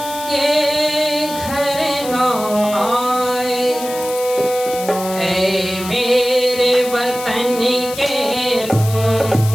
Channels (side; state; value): left; noise; hiss, 11 dB below the sound